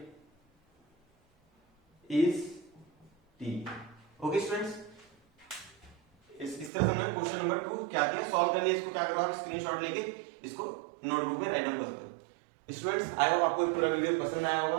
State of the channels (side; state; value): left; drops out; at 6.7 s